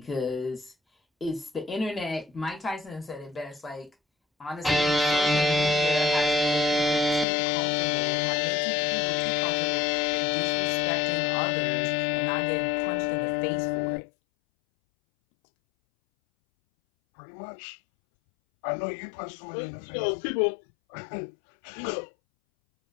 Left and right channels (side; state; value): right; drops out; at 7.2 s